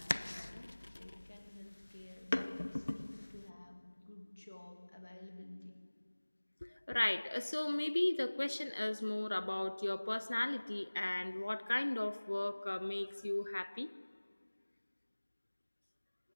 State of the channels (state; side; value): inverted; both; correlation -1.00